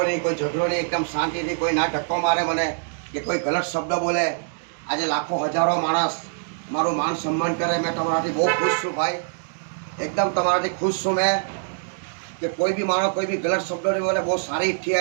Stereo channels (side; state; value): left; silent; digital silence